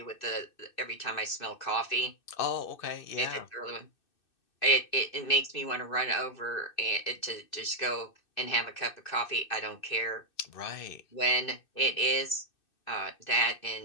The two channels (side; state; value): right; late; 2.6 ms